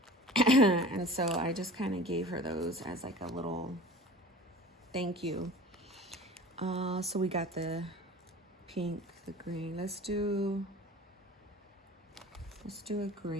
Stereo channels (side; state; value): both; normal; correlation 0.41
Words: And so I just kind of gave her those as like a little thank you. So we got the pink, the green. Let's do a